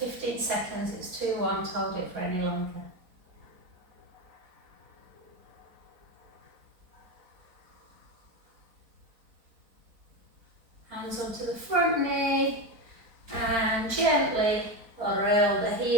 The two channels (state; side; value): late; left; 4.4 ms